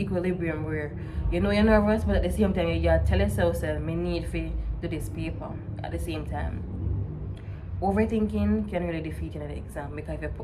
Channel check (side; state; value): both; identical; correlation 1.00